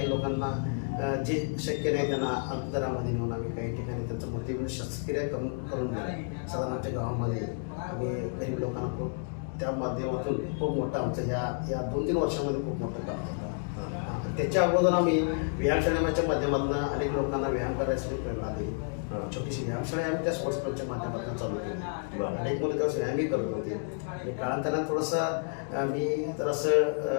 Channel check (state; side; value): silent; right; 58 dB below the other